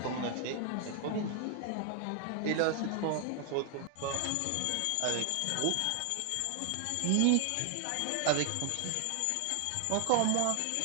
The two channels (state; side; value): different; both; correlation 0.00